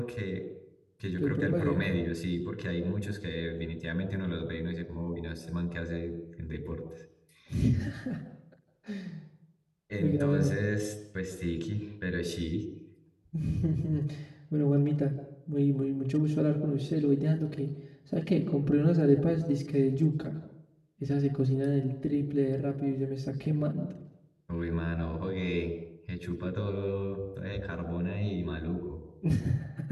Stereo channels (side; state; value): both; identical; correlation 1.00